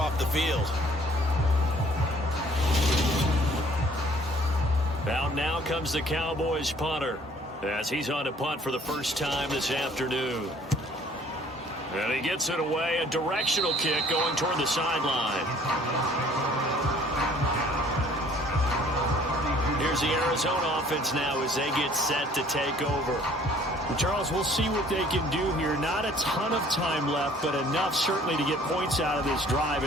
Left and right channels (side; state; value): both; normal; correlation 0.56